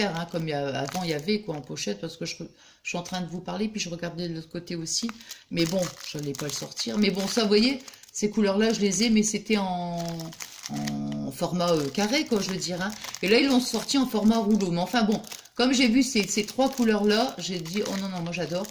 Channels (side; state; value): both; identical; correlation 1.00